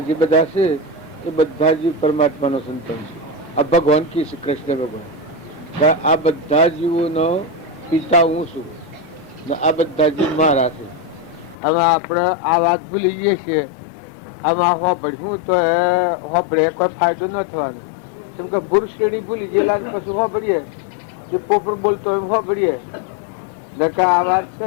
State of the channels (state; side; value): drops out; right; at 11.6 s